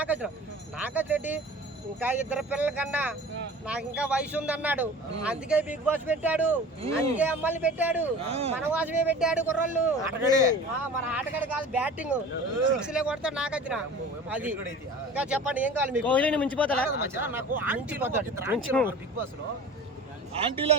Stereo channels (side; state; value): both; normal; correlation 0.40